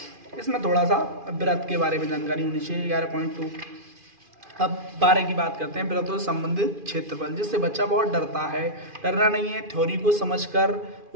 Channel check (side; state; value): left; late; 2.5 ms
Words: इसमें थोड़ा सा वृत्त के बारे में जानकारी होनी चाहिए, 11.2। अब 12 की बात करते हैं, वृत्तों से संबंधित क्षेत्रफल, जिससे बच्चा बहुत डरता है। डरना नहीं है, थ्योरी को समझकर